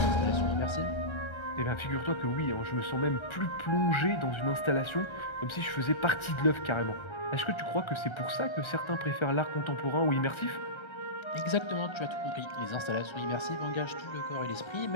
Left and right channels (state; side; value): late; right; 1.3 ms